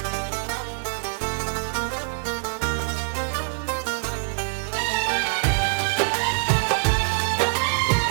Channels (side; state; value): left; silent; 62 dB below the other